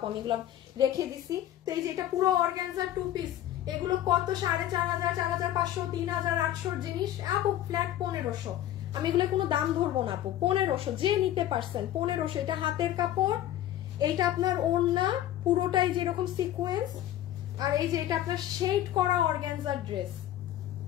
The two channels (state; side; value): quieter; right; 12.7 dB